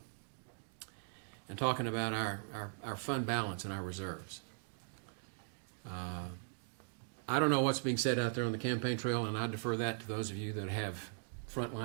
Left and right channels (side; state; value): left; silent; 51 dB below the other